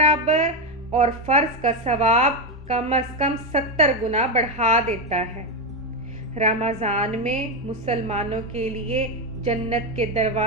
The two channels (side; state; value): both; normal; correlation 0.08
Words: اور فرض کا ثواب کم از کم 70 گنا بڑھا دیتا ہے۔ رمضان میں مسلمانوں کے لیے جنت کے